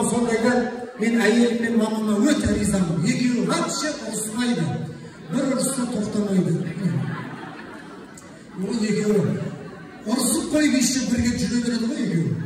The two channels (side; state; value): both; identical; correlation 1.00